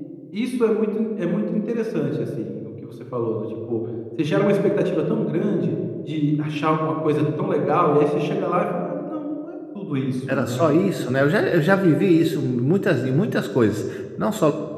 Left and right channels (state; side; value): identical; both; correlation 1.00